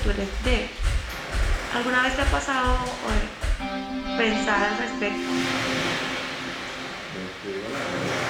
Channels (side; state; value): both; identical; correlation 1.00